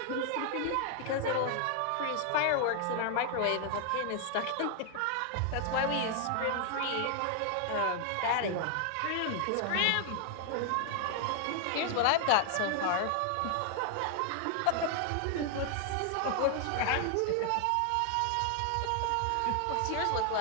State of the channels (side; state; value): both; different; correlation 0.00